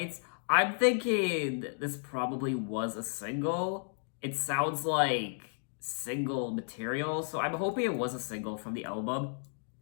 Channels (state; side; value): silent; right; 56 dB below the other